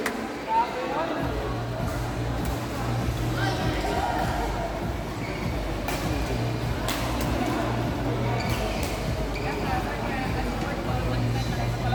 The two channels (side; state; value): both; identical; correlation 1.00